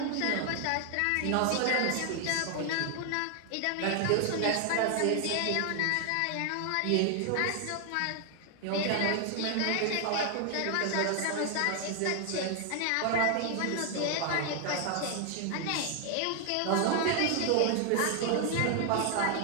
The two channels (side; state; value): both; different; correlation 0.00